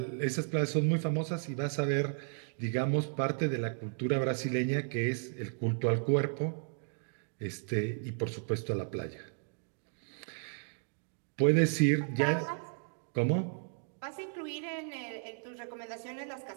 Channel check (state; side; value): silent; left; digital silence